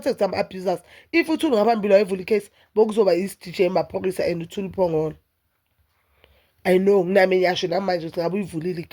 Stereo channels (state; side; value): identical; both; correlation 1.00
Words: some abusers. If uThule ngaphambili wayevula icase, bokuzoba i-DJ emaphoyisa and uThule phongolo. I know nami ngiyasho namanje ukuthi ngabe uyivulile